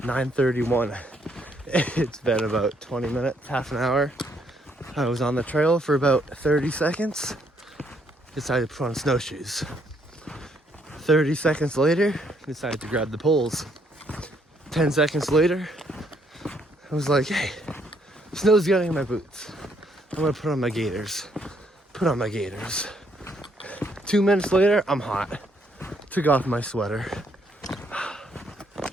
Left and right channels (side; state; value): both; normal; correlation 0.70